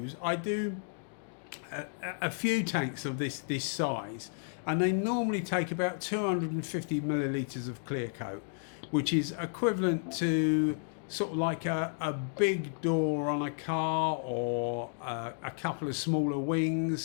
I do a few tanks of this size, and they normally take about 250 millilitres of clear coat, which is equivalent to sort of like a big door on a car, or a couple of smaller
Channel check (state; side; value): silent; right; digital silence